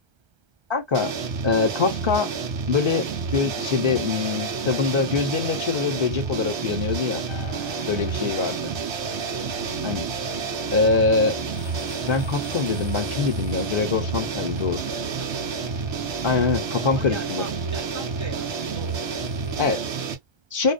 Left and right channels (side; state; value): left; late; 1.3 ms